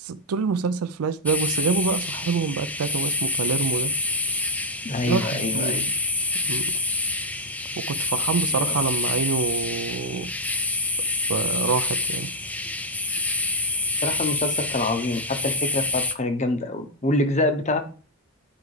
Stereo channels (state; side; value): normal; both; correlation 0.00